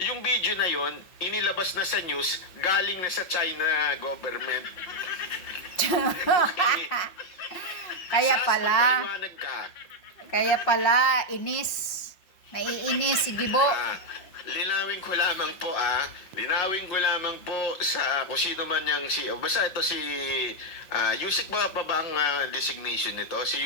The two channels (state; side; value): late; right; 5.6 ms